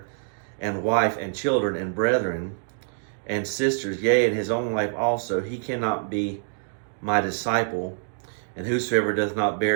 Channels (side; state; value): left; silent; digital silence